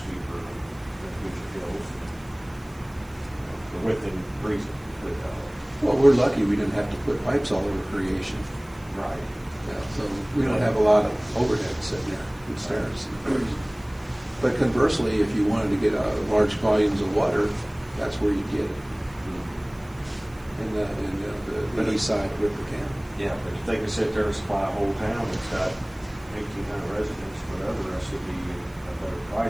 than Hoosier Hills, within reason. Well, we're lucky we didn't have to put pipes all over Creation. Right. Yeah, so we don't have a lot of overhead sitting there in stairs. But conversely, if you wanted to get large volumes of water, that's where you get it. In the east side of River County. Yeah, but if they can sit there and supply a whole town that's got 1,800 residents, whatever, that should be a better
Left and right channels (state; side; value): noise; right; hiss, 27 dB below the sound